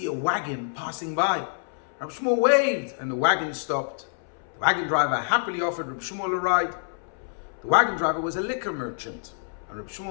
a wagon passing by. Rabbi Shmuel waved and the wagon stopped. The wagon driver happily offered Rabbi Shmuel a ride. The wagon driver was a liquor merchant, and Rabbi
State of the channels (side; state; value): right; silent; 60 dB below the other